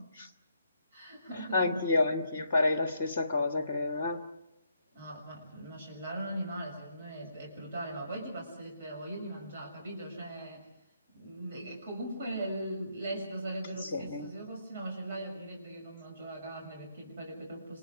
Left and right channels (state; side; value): inverted; both; correlation -0.75